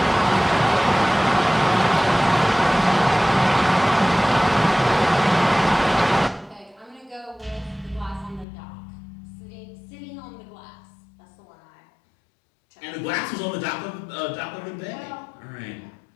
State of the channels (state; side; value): drops out; right; at 8.5 s